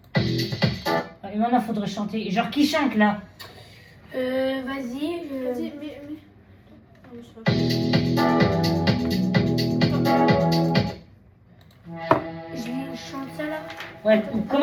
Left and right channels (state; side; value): identical; both; correlation 1.00